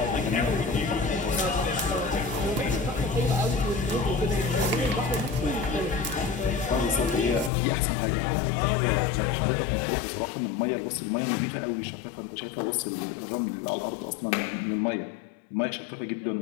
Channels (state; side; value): drops out; right; at 7.5 s